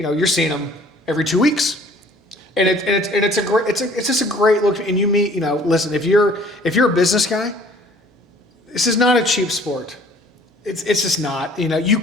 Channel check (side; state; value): both; normal; correlation 0.54